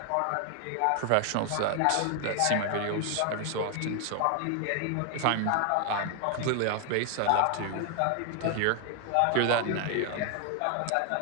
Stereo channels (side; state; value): both; different; correlation 0.00